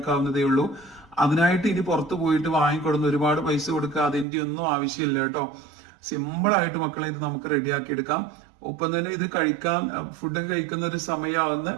ഉള്ളൂ. അതിനായിട്ട് ഇനി പുറത്ത് പോയിട്ട് വാങ്ങിക്കൊടുന്ന് ഒരുപാട് പൈസ കൊടുക്കുക, അതിന്റെ ഒന്നും ആവശ്യമില്ല കേട്ടോ. സിമ്പിൾ ആയിട്ട് മക്കളെ ഇത് നമുക്ക് റെഡിയാക്കി എടുക്കാം. ഒപ്പം തന്നെ ഇത് കഴിക്കാൻ ഫുഡൊക്കെ കഴിക്കുന്ന ഒരു സമയമാകുന്ന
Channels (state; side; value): drops out; left; at 4.2 s